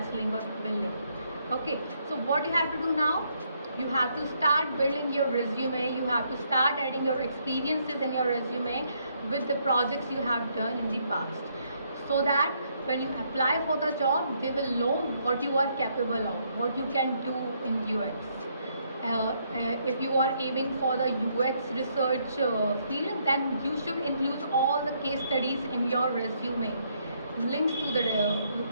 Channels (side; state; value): both; inverted; correlation -0.72